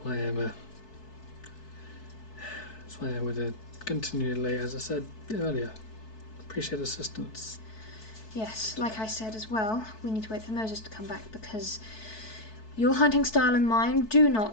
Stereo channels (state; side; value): late; right; 4.6 ms